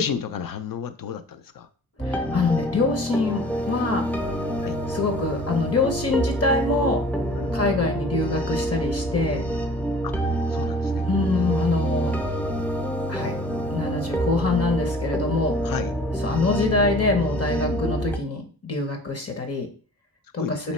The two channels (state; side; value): normal; both; correlation 0.48